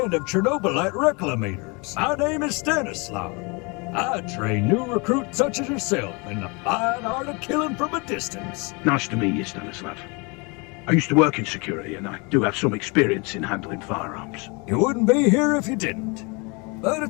of Chernobylite reclamators. My name is Stanislav. I train new recruits such as yourself in the fine art of killing from a distance. Nice to meet you, Stanislav. I used to work in security, and I do have some experience in handling firearms. You wouldn't be here if you didn't. But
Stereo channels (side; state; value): right; quieter; 29.6 dB